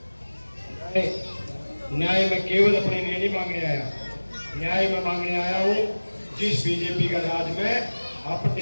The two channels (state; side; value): inverted; both; correlation -1.00